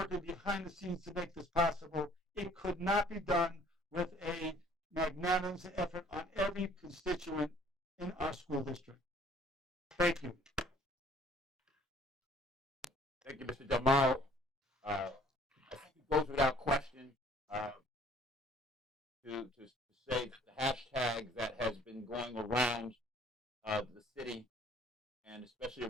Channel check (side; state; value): both; normal; correlation 0.56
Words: behind the scenes to make this possible. It could not be done with a magnanimous effort on every constituent in our school district. Thank you. Thank you, Mr. Jamal. I think it goes without question to say that the hashtag that has been going around the city and especially